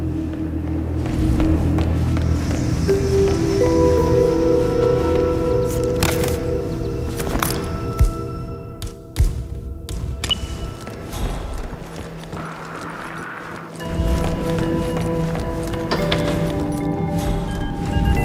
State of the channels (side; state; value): both; identical; correlation 1.00